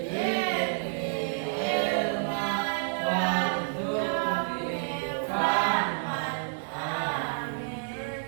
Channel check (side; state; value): left; silent; digital silence